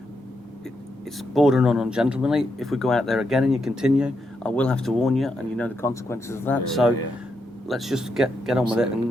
It's bordering on ungentlemanly. If we go out there again and you continue, I will have to warn you, and you know the consequences of that. Let's just get on with it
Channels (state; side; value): normal; both; correlation 0.82